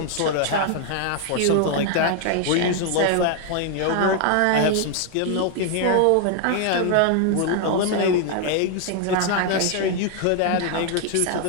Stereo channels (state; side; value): different; both; correlation 0.00